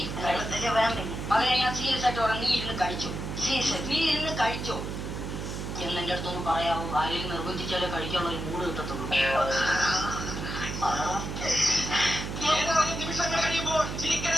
അതെ, ഞാൻ സീരിയസ് ആയിട്ട് പറയാം. നീ ഇരുന്ന് കഴിച്ചോ. നീ ഇരുന്ന് കഴിച്ചോ എന്നെന്റെ അടുത്തൊന്ന് പറയാവോ? ആരെയും നിർബന്ധിച്ചാലേ കഴിക്കാനുള്ള ഒരു മൂഡ് കിട്ടത്തുള്ളൂ. നിമിഷങ്ങൾ കഴിയുമ്പോൾ ചിരിക്കര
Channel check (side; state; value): right; noise; hum, 5 dB below the sound